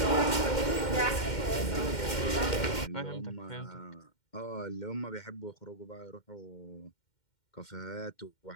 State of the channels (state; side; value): late; right; 2.1 ms